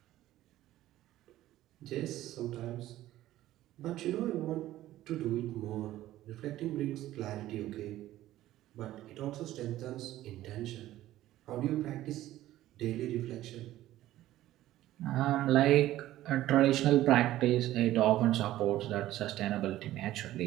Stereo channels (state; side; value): quieter; left; 14.6 dB